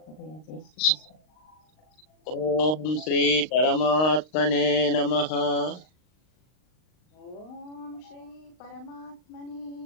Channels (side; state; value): right; late; 39 ms